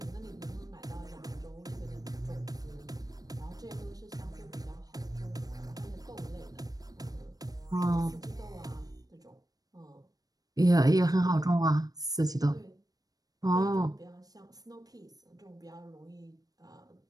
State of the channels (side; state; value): left; late; 0.18 ms